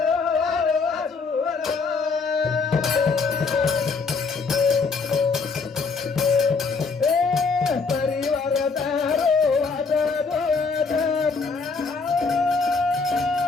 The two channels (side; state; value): right; quieter; 4.6 dB